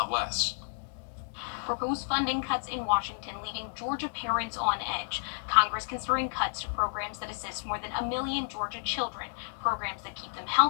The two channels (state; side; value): silent; right; digital silence